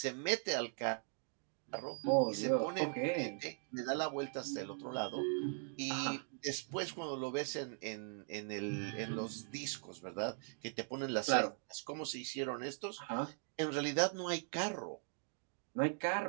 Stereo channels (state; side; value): silent; left; 51 dB below the other